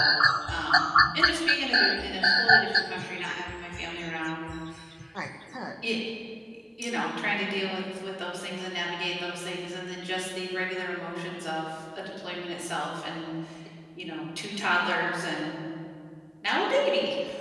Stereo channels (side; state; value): both; identical; correlation 1.00